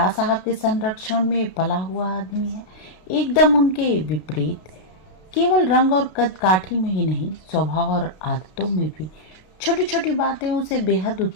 साहब के संरक्षण में पला हुआ आदमी है? एकदम उनके विपरीत। केवल रंग और कद काठी में ही नहीं, स्वभाव और आदतों में भी छोटी छोटी बातें उसे बेहद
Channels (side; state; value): right; late; 32 ms